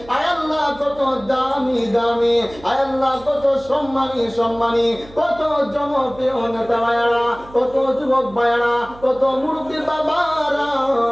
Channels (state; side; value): noise; right; hum, 21 dB below the sound